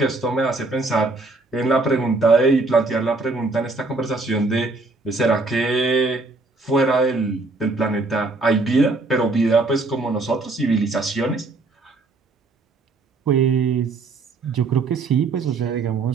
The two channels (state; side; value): quieter; left; 3.4 dB